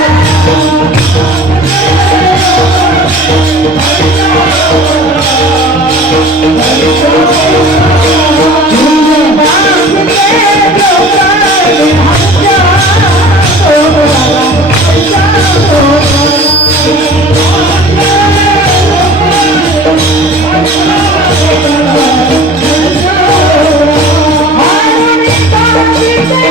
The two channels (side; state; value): both; normal; correlation 0.43